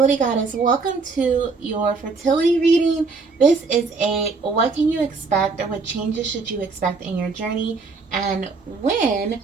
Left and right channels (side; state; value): left; quieter; 4.3 dB